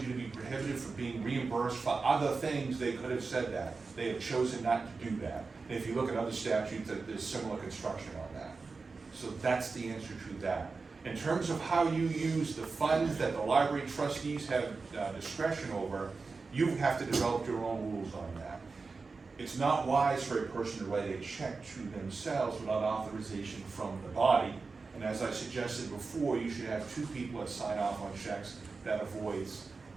you to be prohibited from being reimbursed for other things, they could have said that. They have chosen not to do that. And if you look at other statutes, there's similar construction on that. So that's the answer to that. In terms of how you use the funds that the library trustees have discretion over, you have to develop your own rules on that. It's not wise for a person to write a check to themselves without authorization from the body. And as I suggested before, you should have two people that sign off on checks. That avoids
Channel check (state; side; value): quieter; left; 4.3 dB